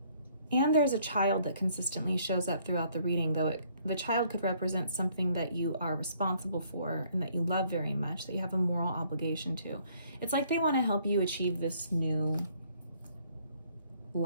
And there's a child that consistently shows up throughout the reading, though the child could represent something that you are responsible for and that you love very much, that you have a moral obligation to. It's like they want to help you achieve this new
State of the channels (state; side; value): inverted; both; correlation -0.64